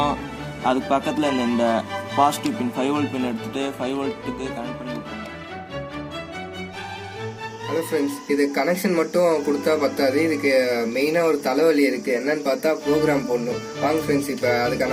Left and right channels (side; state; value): both; identical; correlation 1.00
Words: அதுக்கு பக்கத்தில் இந்த பாசிட்டிவ் பின் 5 volt பின் எடுத்துகிட்டு 5 voltக்கு கனெக்ட் பண்ணி விட்ருங்க. ஹலோ ஃப்ரெண்ட்ஸ், இது கனெக்ஷன் மட்டும் கொடுத்தா பத்தாது, இதுக்கு மெயினாக ஒரு தலைவலி இருக்குது. என்னன்னு பார்த்தா ப்ரோக்ராம் போடணும். வாங்க ஃப்ரெண்ட்ஸ், இப்போ